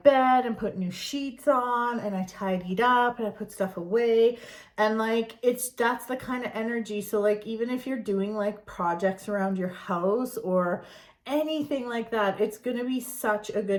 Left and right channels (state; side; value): identical; both; correlation 1.00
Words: bed and put new sheets on, and I tidied up and I put stuff away. And, like, that's the kind of energy. So, like, even if you're doing, like, projects around your house or anything like that, it's gonna be such a